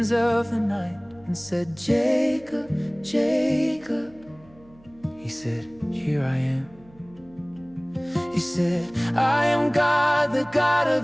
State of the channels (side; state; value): right; noise; hum, 26 dB below the sound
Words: of the night and said, Jacob, Jacob. He said, here I am. He said, I am God, the God